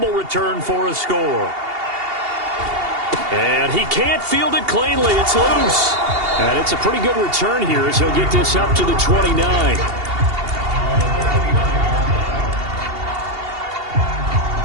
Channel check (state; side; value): late; left; 2.8 ms